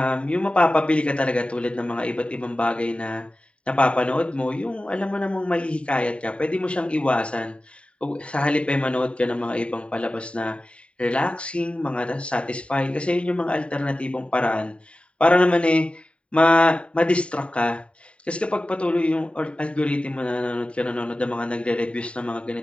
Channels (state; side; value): late; right; 0.060 ms